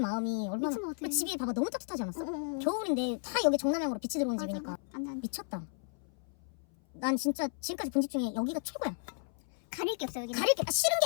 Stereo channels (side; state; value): right; silent; 55 dB below the other